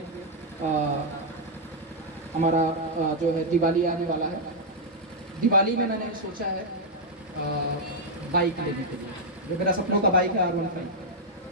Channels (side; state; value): both; normal; correlation -0.03